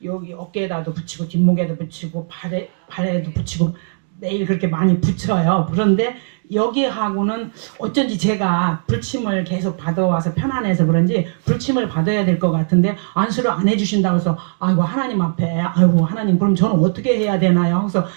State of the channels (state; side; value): silent; left; digital silence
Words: 여기 어깨에다도 붙이고 뒷목에도 붙이고 발에도 붙이고 매일 그렇게 많이 붙여요. 그런데 여기하고는 어쩐지 제가 불침을 계속 받아와서 편안해서 그런지 불침을 받아야 될 것 같은데 안수를 안 해주신다고 해서 아이고 하나님 앞에 아이고 하나님 그럼 저는 어떻게 해야 되나요? 그래서